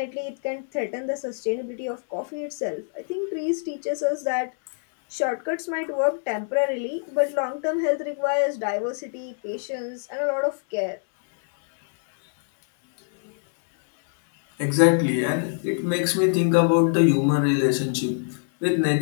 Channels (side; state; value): right; silent; 62 dB below the other